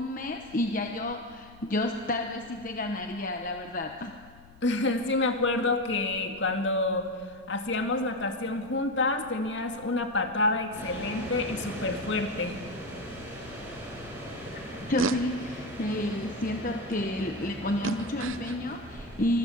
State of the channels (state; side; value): noise; left; rumble, 23 dB below the sound